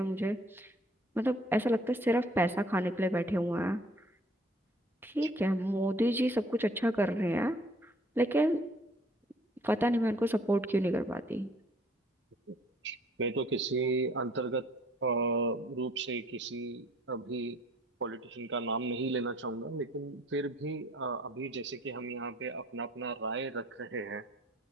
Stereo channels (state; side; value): normal; both; correlation 0.58